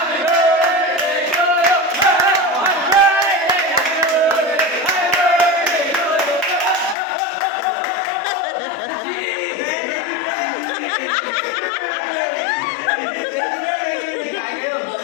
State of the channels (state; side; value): drops out; right; at 7.0 s